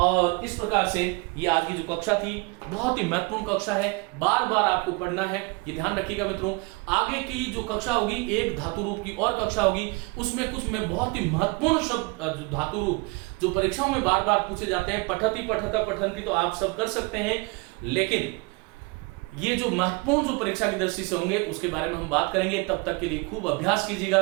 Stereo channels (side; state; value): left; quieter; 27.8 dB